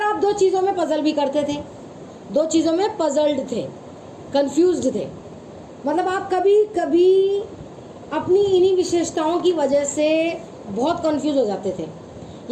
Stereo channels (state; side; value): identical; both; correlation 1.00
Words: आप दो चीज़ों में पजल भी करते थे, दो चीज़ों में पजल्ड थे, कंफ्यूज्ड थे। मतलब आप कभी कभी अपनी इन्हीं विशेषताओं की वजह से बहुत कंफ्यूज हो जाते थे।